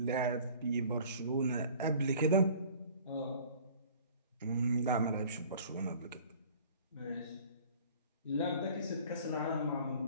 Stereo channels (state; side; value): inverted; both; correlation -0.49